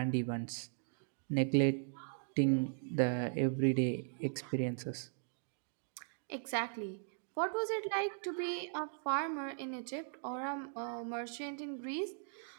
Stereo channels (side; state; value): left; silent; digital silence